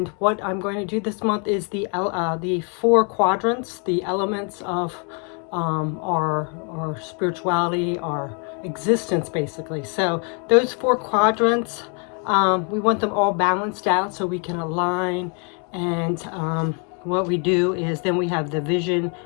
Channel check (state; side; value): quieter; right; 37.7 dB